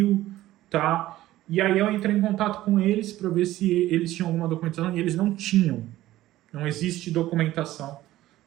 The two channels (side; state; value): left; quieter; 15.3 dB